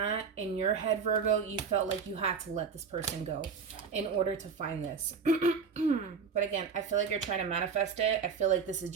in your head, Virgo, you felt like you had to let this person go in order to find this. But again, I feel like you're trying to manifest it. I feel like this is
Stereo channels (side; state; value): left; quieter; 5.9 dB